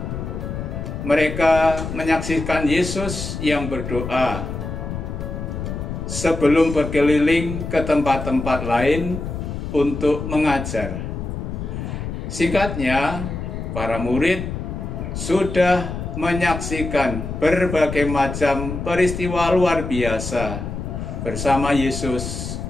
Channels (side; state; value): left; noise; rumble, 6 dB below the sound